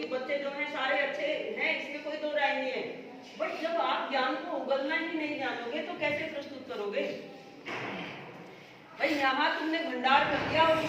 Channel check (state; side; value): identical; both; correlation 1.00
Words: बच्चे जो हैं सारे अच्छे हैं, इसमें कोई दो राय नहीं है। बट जब आप ज्ञान को उगलना ही नहीं जानोगे तो कैसे प्रस्तुत करोगे? भाई यहाँ तुमने भंडार कर दिया और